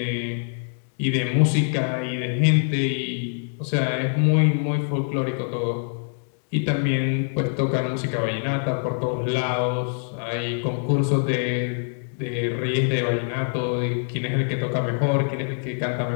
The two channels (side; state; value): right; silent; digital silence